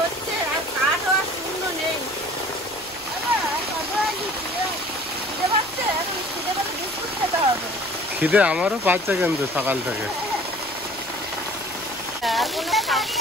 আর কাঠও আর শূন্য নেই। খিদে পাচ্ছে, এখন খিদে পেলে বিস্কুট খেতে হবে। খিদে আমারও পাচ্ছে কিন্তু সকাল থেকে।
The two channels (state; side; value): noise; left; rumble, 26 dB below the sound